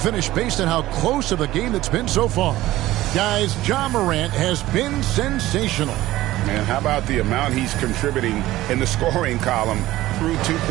based on how close of a game it's been so far. Guys, Ja Morant has been sensational. Man, how about the amount he's contributing in the scoring column through 2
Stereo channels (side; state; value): left; quieter; 16.2 dB